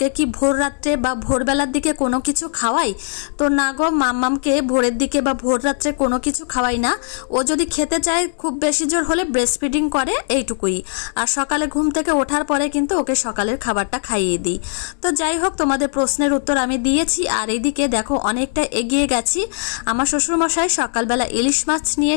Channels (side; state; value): right; silent; digital silence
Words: কি ভোর রাত্রে বা ভোরবেলার দিকে কোনো কিছু খাওয়াই। তো না গো, মাম্মামকে ভোরের দিকে বা ভোর রাত্রে কোনো কিছু খাওয়াই না। ও যদি খেতে চায় খুব বেশি জোর হলে ব্রেস্ট ফিডিং করে, এইটুকুই। আর সকালে ঘুম থেকে ওঠার পরে কিন্তু ওকে সকালের খাবারটা খাইয়ে দিই। তো যাই হোক, তোমাদের প্রশ্নের উত্তর আমি দিয়েছি। আর এইদিকে দেখো অনেকটা এগিয়ে গেছি। আমার শ্বশুরমশাই সকালবেলা ইলিশ মাছ নিয়ে